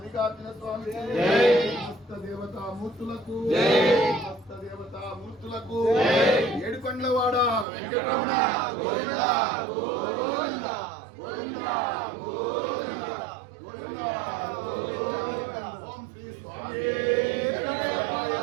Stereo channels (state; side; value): drops out; left; at 7.7 s